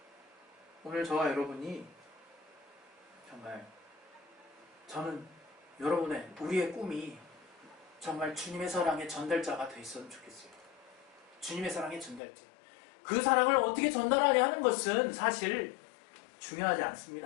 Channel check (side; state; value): right; drops out; at 12.2 s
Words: 오늘 저와 여러분이 정말 저는 여러분의 우리의 꿈이 정말 주님의 사랑의 전달자가 돼 있었으면 좋겠어요. 주님의 사랑의 전달자. 그 사랑을 어떻게 전달하냐 하는 것은 사실 중요하지